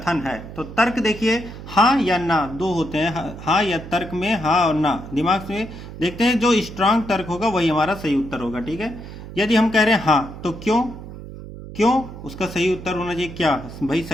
है तो तर्क देखिए हाँ या ना, दो होते हैं, हाँ या तर्क में हाँ और ना। दिमाग से देखते हैं, जो स्ट्रांग तर्क होगा वही हमारा सही उत्तर होगा। ठीक है, यदि हम कह रहे हैं हाँ तो क्यों उसका सही उत्तर होना चाहिए क्या, भाई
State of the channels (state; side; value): noise; right; hum, 13 dB below the sound